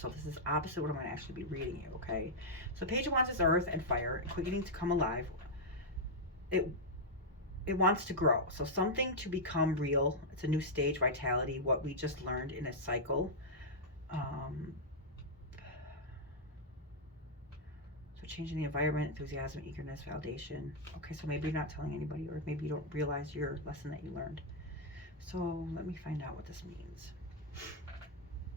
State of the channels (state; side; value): normal; both; correlation -0.05